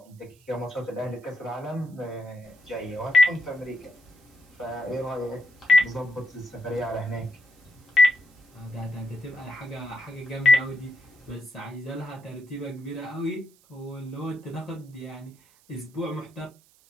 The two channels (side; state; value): right; noise; hiss, 30 dB below the sound